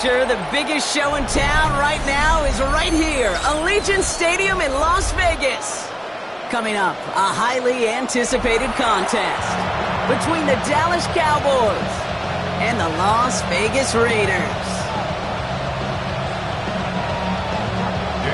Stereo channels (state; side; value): identical; both; correlation 1.00